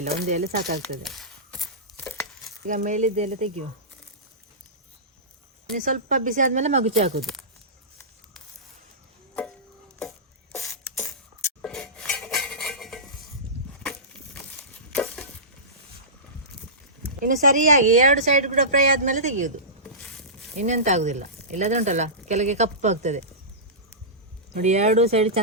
ಇಲ್ಲ, 1 ಎಲೆ ಸಾಕಾಗ್ತದೆ. ಈಗ ಮೇಲಿದ್ದ ಎಲೆ ತೆಗೆಯುವ. ಇನ್ನು ಸ್ವಲ್ಪ ಬಿಸಿ ಆದಮೇಲೆ ಮಗುಚಿ ಹಾಕೋದು. ಇನ್ನು ಸರಿಯಾಗಿ 2 ಸೈಡ್ ಕೂಡ ಫ್ರೈ ಆದಮೇಲೆ ತೆಗೆಯೋದು. ಇನ್ನೆಂತ ಆಗೋದಿಲ್ಲ, ಇಲ್ಲದೆ ಉಂಟಲ್ಲ ಕೆಳಗೆ ಕಪ್ಪಾಗ್ತದೆ ನೋಡಿ. 2 ಸೈಡ್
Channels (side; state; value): both; normal; correlation -0.20